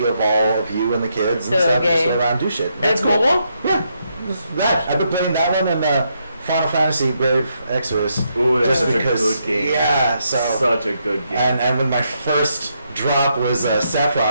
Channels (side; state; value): both; inverted; correlation -0.79